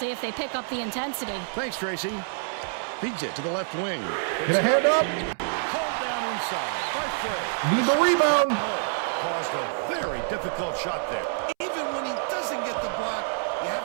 if they pick up the intensity. Thanks, Tracy. Feeds it to the left wing. Get a hand up. Hold down inside by Frey. Need the rebound. Caused a very difficult shot there. Even when he doesn't get the block, you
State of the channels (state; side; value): silent; left; 60 dB below the other